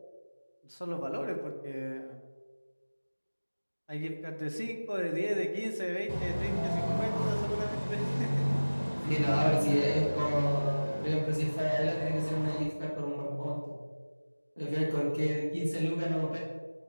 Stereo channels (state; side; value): inverted; both; correlation -1.00